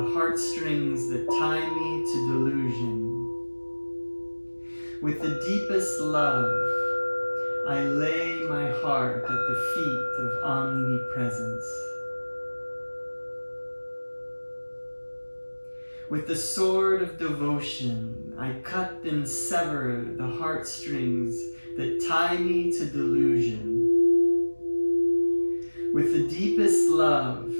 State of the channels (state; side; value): inverted; both; correlation -1.00